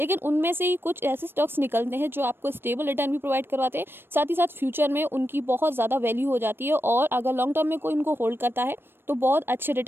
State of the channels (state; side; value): late; left; 0.10 ms